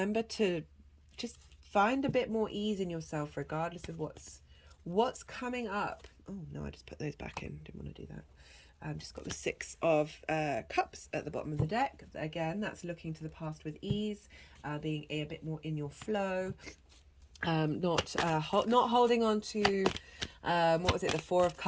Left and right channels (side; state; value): both; identical; correlation 1.00